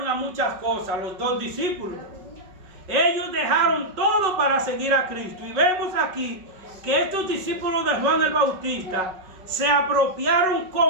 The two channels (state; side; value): late; left; 5.4 ms